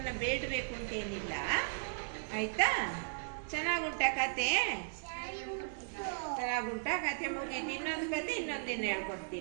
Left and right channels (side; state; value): left; silent; digital silence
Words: ಬೇಡಬೇಕು ಅಂತೇನಿಲ್ಲ. ಆಯ್ತಾ? ಚೆನ್ನಾಗುಂಟ ಕತೆ? ಚೆನ್ನಾಗುಂಟ ಕತೆ. ಮುಗೀತು. ಇನ್ನೊಂದು ಕತೆ ಇನ್ನೊಂದಿನ